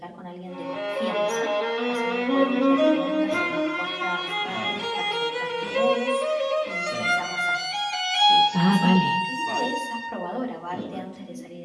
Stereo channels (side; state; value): both; identical; correlation 1.00